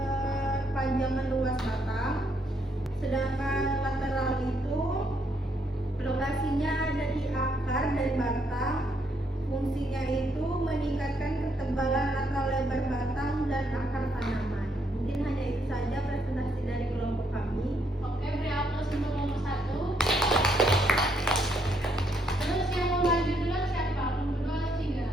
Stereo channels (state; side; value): normal; both; correlation 0.74